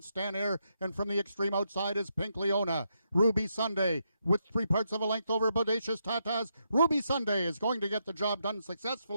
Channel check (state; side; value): inverted; both; correlation -0.81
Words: Stan Air. And from the extreme outside is Pink Leona. Ruby Sunday with 3/4 of a length over Bodacious Tatas. Ruby Sunday is going to get the job done